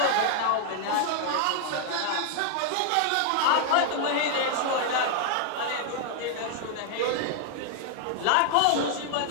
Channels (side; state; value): both; different; correlation 0.00